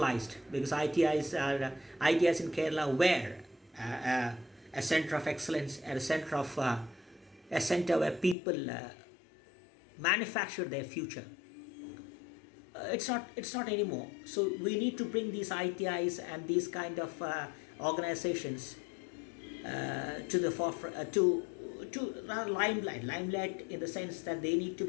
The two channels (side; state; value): right; drops out; at 8.3 s